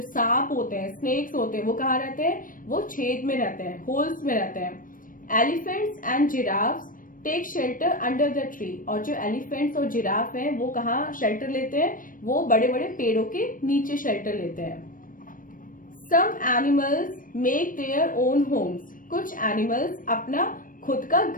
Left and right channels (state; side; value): late; right; 0.40 ms